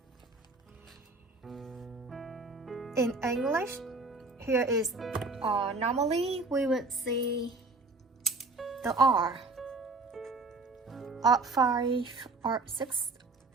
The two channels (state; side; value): quieter; left; 3.4 dB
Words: In English, here is normally we would see the R, R5, R6,